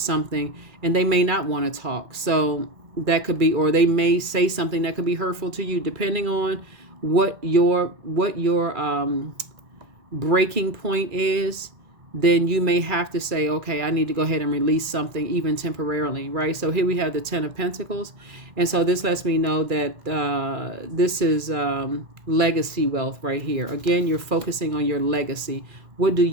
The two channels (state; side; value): late; left; 2.3 ms